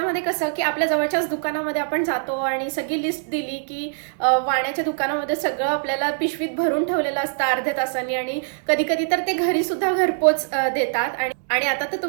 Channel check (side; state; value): left; silent; digital silence